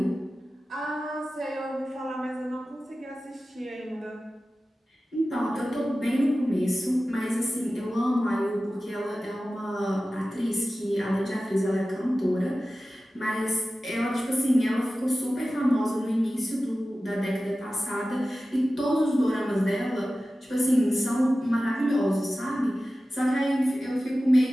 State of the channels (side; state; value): both; normal; correlation 0.95